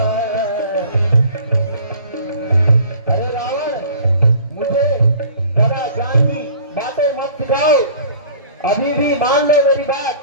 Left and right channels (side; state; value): both; inverted; correlation -0.48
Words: अरे रावण, मुझे जरा ज्ञान की बातें मत सिखाओ, अभी भी मान लो मेरी बात,